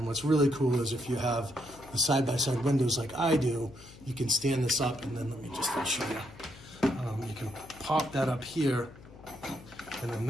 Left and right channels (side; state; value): left; noise; hum, 20 dB below the sound